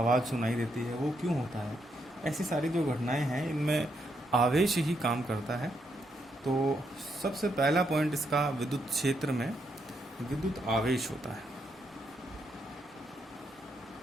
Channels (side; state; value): both; normal; correlation 0.79